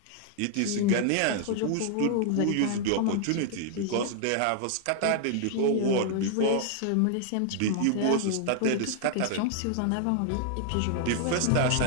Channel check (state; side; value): different; both; correlation 0.00